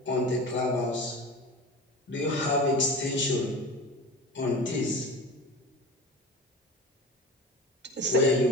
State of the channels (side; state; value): both; normal; correlation 0.32